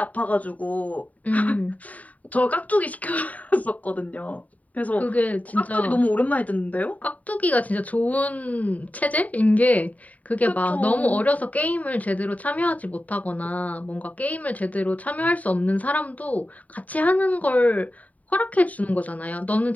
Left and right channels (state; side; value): late; right; 0.071 ms